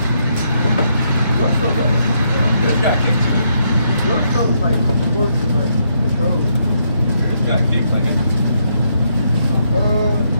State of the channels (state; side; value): inverted; both; correlation -0.76